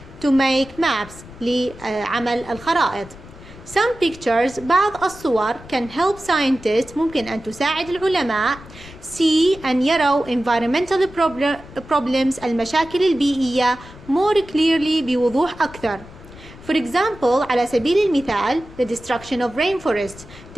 to make maps لعمل الخرائط. Some pictures بعض الصور can help scientists ممكن أن تساعد العلماء see أن يروا environmental problems المشاكل البيئية more clearly بوضوح أكثر. For example على سبيل المثال the destruction of rainforests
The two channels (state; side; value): noise; left; rumble, 19 dB below the sound